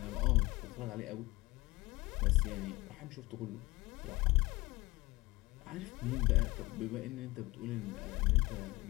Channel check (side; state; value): right; quieter; 21.1 dB